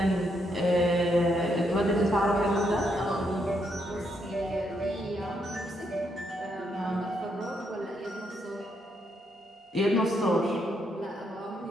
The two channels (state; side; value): normal; both; correlation 0.77